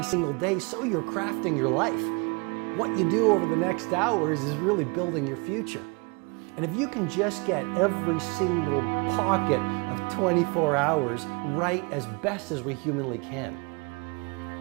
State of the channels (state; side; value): quieter; left; 31.0 dB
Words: single day, so you're crafting your life. What you do over the next hours is really building your future. And if you can just get every single pocket of 24 hours right as best as we humanly can,